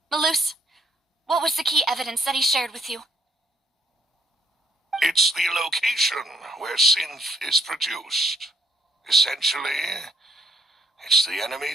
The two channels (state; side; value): normal; both; correlation 0.68